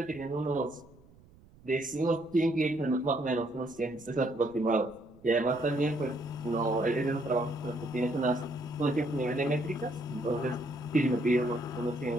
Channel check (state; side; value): noise; right; rumble, 25 dB below the sound